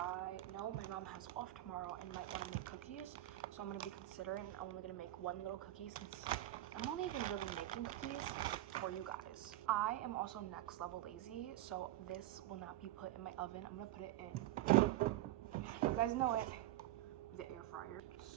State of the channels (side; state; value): left; quieter; 15.0 dB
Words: know my mom has off tomorrow and might want to make cookies, so I'm going to be considering I'm only going to make one little cookie since I'm not even really making cookies for you guys. I am also next level lazy, so this will not be put in my oven. I'm going to put it in, you guys know it, the air fryer.